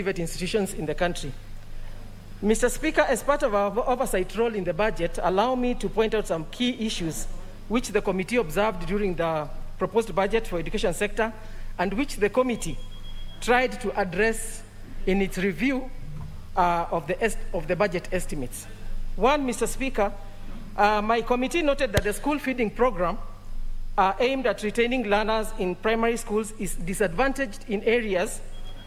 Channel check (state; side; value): identical; both; correlation 1.00